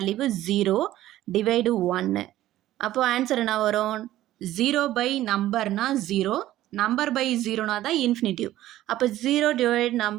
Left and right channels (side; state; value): left; quieter; 14.3 dB